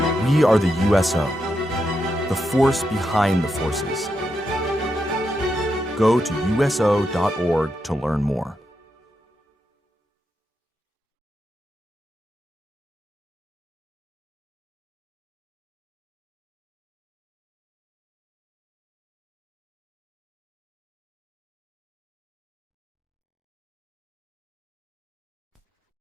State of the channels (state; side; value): normal; both; correlation 0.84